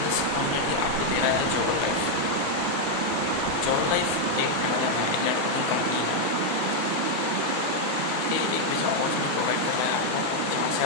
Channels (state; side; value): different; both; correlation 0.00